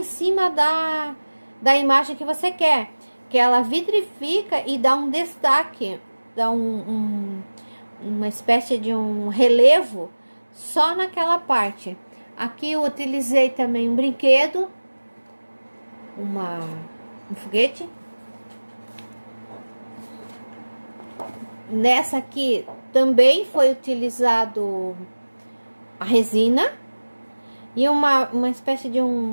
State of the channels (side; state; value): both; inverted; correlation -1.00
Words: cima da imagem que você quer. Que ela vitrifica e dá um destaque, dá uma espécie de um relevo só naquela parte. Aqui eu utilizei também um brinquedo, um foguete. Nessa aqui também foi utilizado a resina e uma espécie de